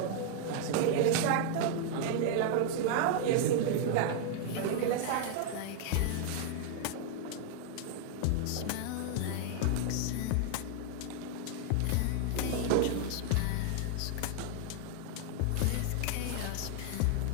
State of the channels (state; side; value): different; both; correlation 0.00